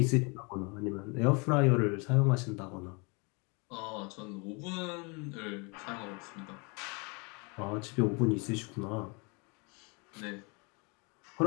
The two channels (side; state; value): right; quieter; 31.1 dB